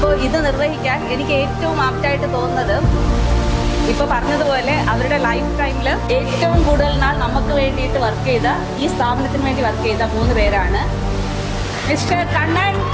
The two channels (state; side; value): identical; both; correlation 1.00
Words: ഇത് നിർവഹിക്കാൻ എനിക്ക് ഏറ്റവും ആപ്റ്റായിട്ട് തോന്നുന്നത് ഇപ്പോൾ പറഞ്ഞതുപോലെ അവരുടെ ലൈഫ് ടൈമിൽ ഏറ്റവും കൂടുതൽ നാൾ നമുക്ക് വേണ്ടിയിട്ട് വർക്ക് ചെയ്ത, ഈ സ്ഥാപനത്തിന് വേണ്ടി വർക്ക് ചെയ്ത 3 പേരാണ്. മിസ്റ്റർ കണ്ണൻ,